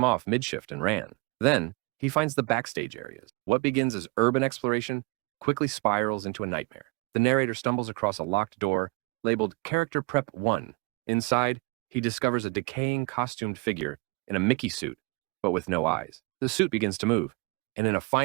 off mid-shift and ran. Then, he finds the backstage areas. What begins as urban exploration quickly spirals into a nightmare. The narrator stumbles across a locked door labeled Character Prep 1. Inside, he discovers a decaying costumed figure in a Mickey suit, but with no eyes. The suit begins to move, and in a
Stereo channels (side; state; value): left; quieter; 27.9 dB